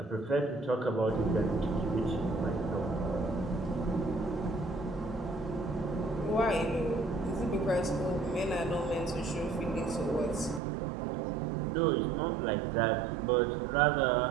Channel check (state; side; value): drops out; left; at 10.6 s